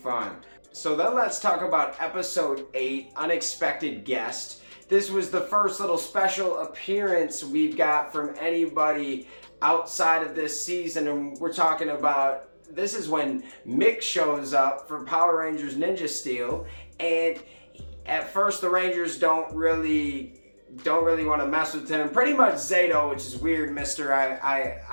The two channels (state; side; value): inverted; both; correlation -1.00